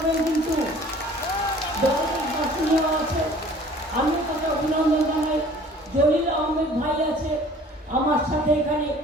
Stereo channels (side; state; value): both; normal; correlation 0.50